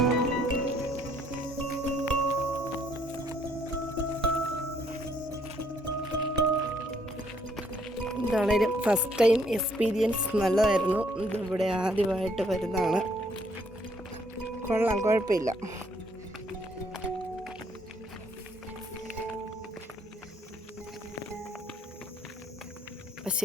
എന്താണേലും ഫസ്റ്റ് ടൈം എക്സ്പീരിയൻസ് നല്ലതായിരുന്നു. ഇതിവിടെ ആദ്യമായിട്ട് വരുന്നതാണ്. കൊള്ളാം, കുഴപ്പമില്ല. അപ്പം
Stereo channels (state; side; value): normal; both; correlation 0.67